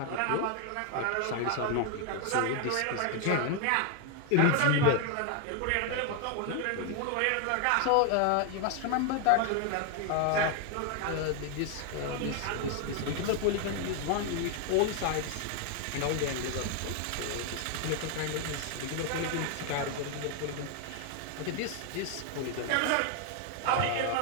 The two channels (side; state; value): both; different; correlation 0.01